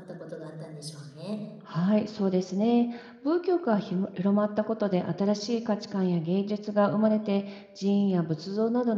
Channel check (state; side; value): identical; both; correlation 1.00